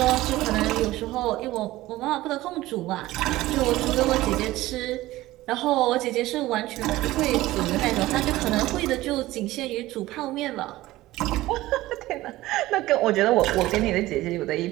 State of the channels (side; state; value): left; quieter; 17.2 dB